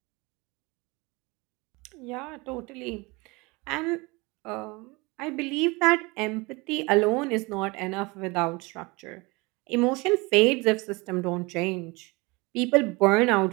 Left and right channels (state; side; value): quieter; left; 25.2 dB